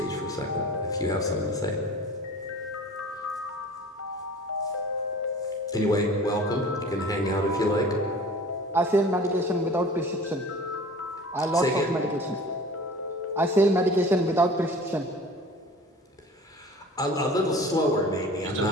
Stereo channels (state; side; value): normal; both; correlation 0.42